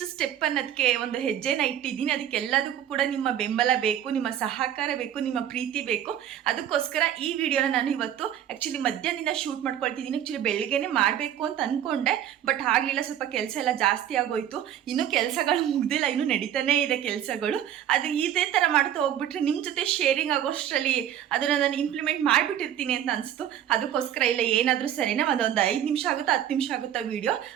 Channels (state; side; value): quieter; left; 10.5 dB